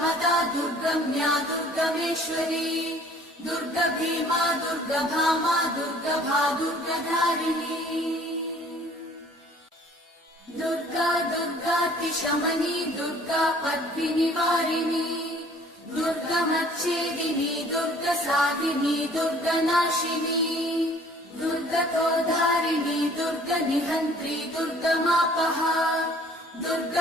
दुर्गम्या दुर्गमेश्वरी दुर्गभीमा दुर्गभामा दुर्गभा दुर्गधारिणी दुर्गा दुर्गातिशमनी दुर्गा पद्मिनिवारिणी दुर्गमच्छेदिनी दुर्गसाधिनी दुर्गनाशिनी दुर्गतोद्धारिणी दुर्गनिहन्त्री दुर्गमापहा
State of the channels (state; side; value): normal; both; correlation 0.54